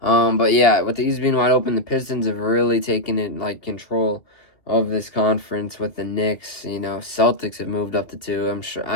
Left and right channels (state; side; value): late; right; 2.5 ms